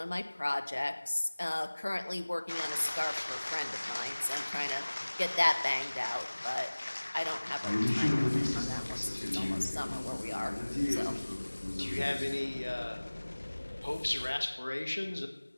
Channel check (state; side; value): inverted; both; correlation -1.00